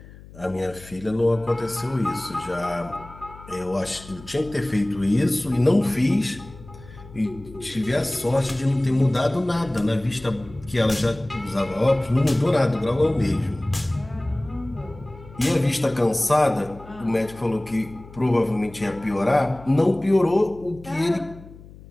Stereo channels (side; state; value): left; noise; hum, 19 dB below the sound